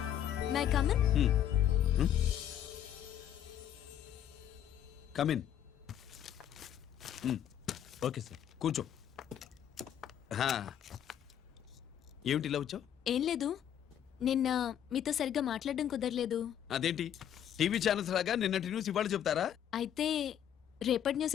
May I come in? Come in. Okay sir, కూర్చో. ఏమిటి ఇలా వచ్చావు? ఏం లేదు, నిన్న మీతో సరిగ్గా మాట్లాడడం కుదరలేదు. అదేంటి, టీవీ ఛానల్స్ లాగా నిన్నటి న్యూస్ ఇవాళ చెప్తారా? అయితే రేపటి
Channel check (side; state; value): right; quieter; 10.1 dB